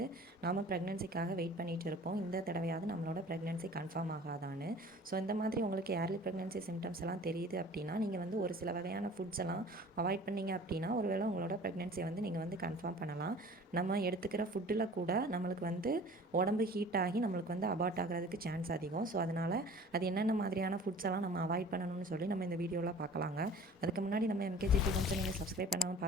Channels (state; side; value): normal; both; correlation 0.45